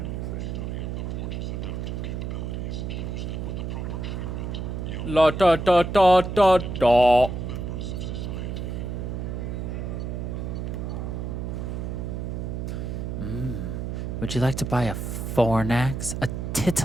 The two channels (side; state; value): right; noise; hum, 4 dB below the sound